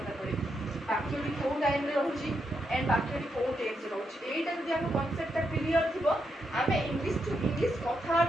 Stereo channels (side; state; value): both; normal; correlation 0.82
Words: पड़े बाक्यटी को टाइम रे रहउची एंड बाक्यटी को टेंस रहउची एटा जदि हम कांसेप्ट टा क्लियर थिबो आमे इंग्लिश टू इंग्लिश